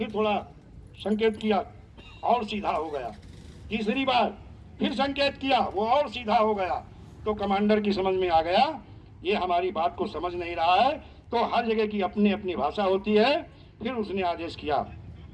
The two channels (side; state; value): both; identical; correlation 1.00